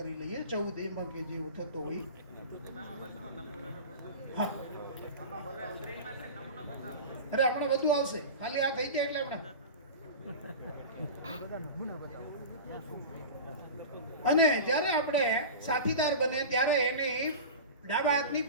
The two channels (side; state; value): both; inverted; correlation -0.30